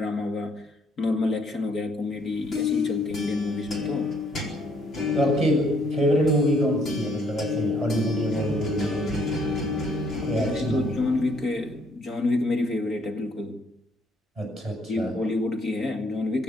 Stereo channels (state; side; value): normal; both; correlation 0.66